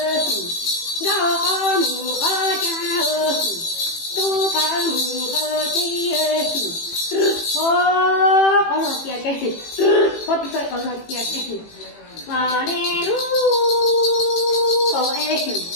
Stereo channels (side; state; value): right; late; 18 ms